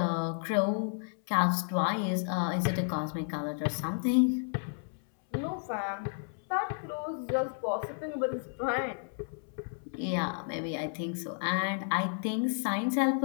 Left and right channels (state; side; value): silent; right; 57 dB below the other